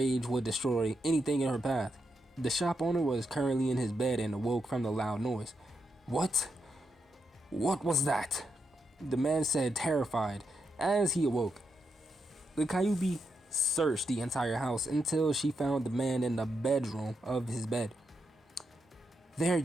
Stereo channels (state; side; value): normal; both; correlation 0.83